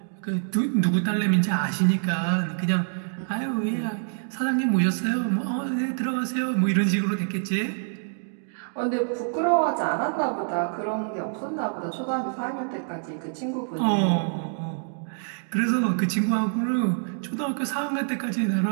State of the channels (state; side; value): silent; left; digital silence